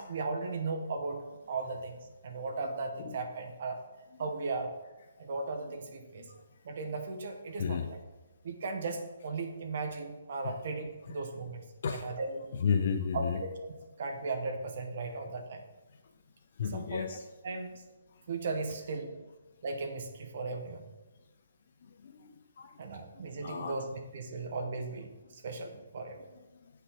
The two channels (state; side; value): inverted; both; correlation -0.67